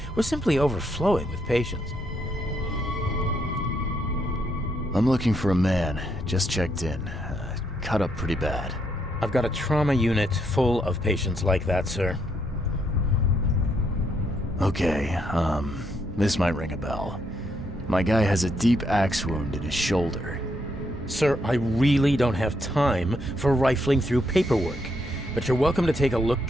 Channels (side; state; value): both; normal; correlation 0.76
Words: We're simply overflowing with patients. I'm looking for a man. Just checked in. Cut up pretty bad. I've got a trauma unit full of patients like that, sir. Okay, this might ring a bell. My guy has a deep axe wound in his shoulder. Sir, I really don't have time for rifling through paperwork, but you're welcome to take a